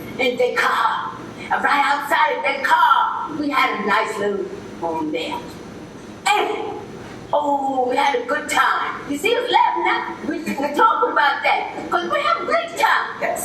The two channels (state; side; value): identical; both; correlation 1.00